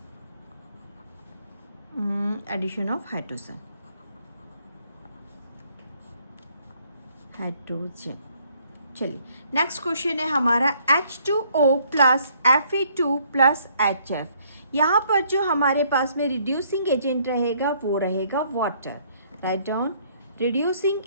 hydrogen. चलिए नेक्स्ट क्वेश्चन है हमारा H2O plus Fe2 plus HF। यहाँ पर जो हमारे पास में रिड्यूसिंग एजेंट रहेगा वो रहेगा water. Write down,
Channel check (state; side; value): inverted; both; correlation -0.65